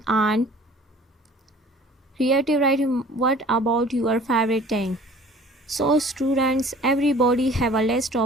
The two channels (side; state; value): both; normal; correlation 0.48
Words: writing, what about your favorite thing? So students, everybody have a list